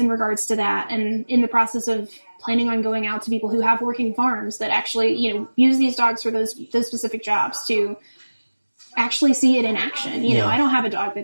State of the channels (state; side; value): inverted; both; correlation -1.00